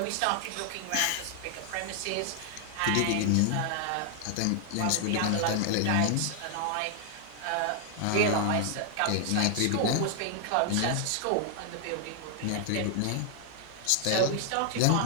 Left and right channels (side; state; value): both; different; correlation 0.00